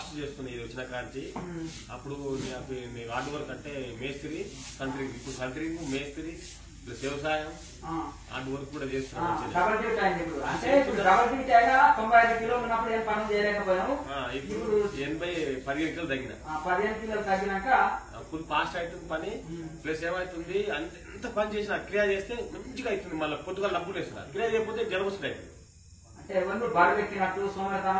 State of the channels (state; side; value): identical; both; correlation 1.00